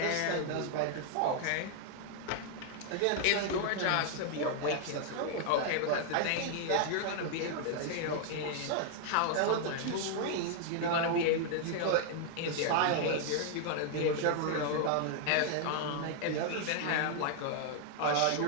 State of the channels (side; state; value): both; different; correlation 0.00